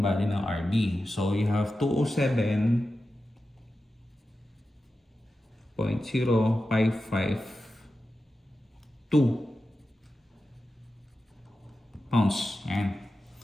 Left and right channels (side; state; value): both; normal; correlation 0.92